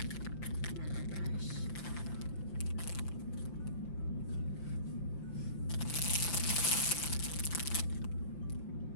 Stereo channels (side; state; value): right; late; 5.8 ms